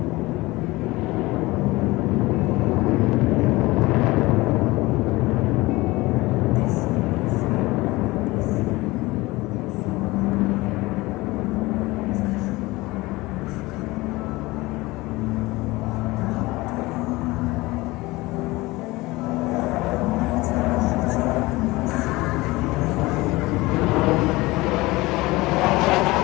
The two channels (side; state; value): right; quieter; 20.9 dB